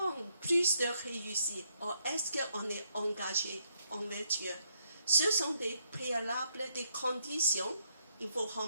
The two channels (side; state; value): both; inverted; correlation -0.76